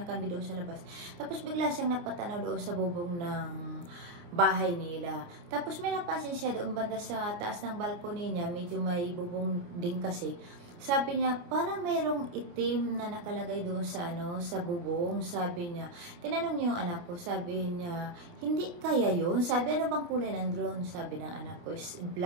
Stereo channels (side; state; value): left; late; 29 ms